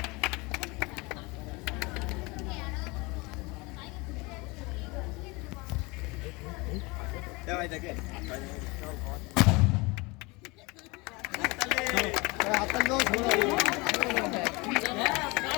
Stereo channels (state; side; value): quieter; right; 25.6 dB